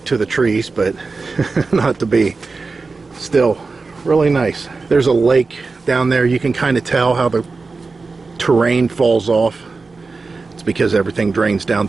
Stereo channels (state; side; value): quieter; left; 4.1 dB